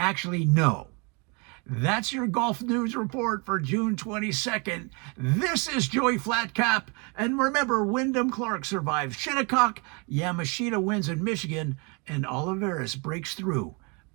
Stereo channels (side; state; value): left; quieter; 32.2 dB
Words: no. That's your golf news report for June 22nd. This is Joey Flatcap. And remember, Wyndham Clark survives Shinnecock, Yamashita wins in Michigan, and Olivares breaks through